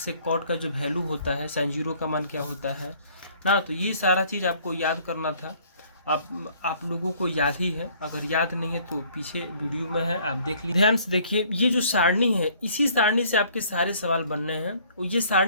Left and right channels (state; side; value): inverted; both; correlation -0.58